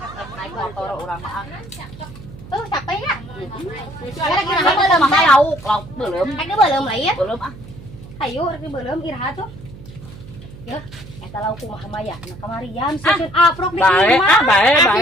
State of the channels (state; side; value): noise; right; hum, 17 dB below the sound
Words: naik motor urang mah. Tuh capek ya? Kira-kira mah mah lauk belum. Ada belum lain? Belum ah. Ayo rek belum iraha tuh. Ya, eta lauk kumaha mah ya? Nah kamarian susun aprok di imah.